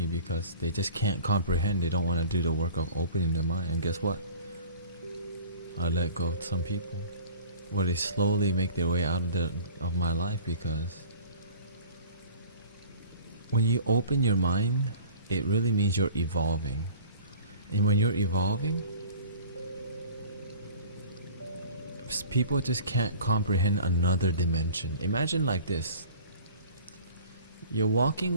because they just can't comprehend. They don't want to do the work of opening their mind. And guess what? I let go of some people, where they slowly make their way out of my life, because when you open your mind, it really means you're evolving. And when you're evolving, people just can't comprehend another dimension. Imagine like this. You're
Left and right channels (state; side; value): inverted; both; correlation -0.45